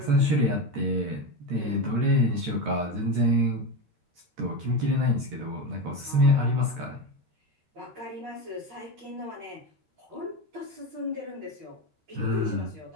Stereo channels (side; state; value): left; late; 13 ms